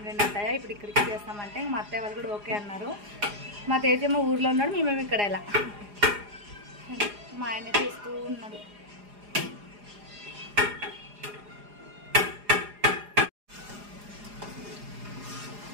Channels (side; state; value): left; late; 4.9 ms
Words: అత్తయ్య, ఇప్పుడు ఇక్కడికి చేస్తామంటే మా అత్తయ్య వాళ్ళు కూడా ఓకే అన్నారు. మా తేజేమో ఊర్లో ఉన్నాడు, మేమేమి ఇక్కడ ఎలా. మా ఆయన చూస్తూ ఉన్నాడు.